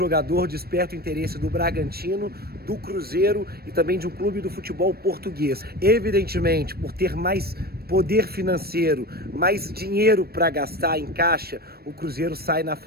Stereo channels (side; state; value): left; late; 0.45 ms